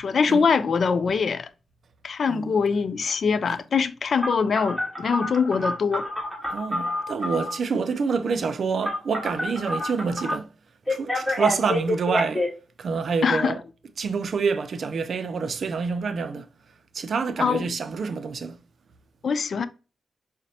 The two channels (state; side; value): normal; both; correlation 0.81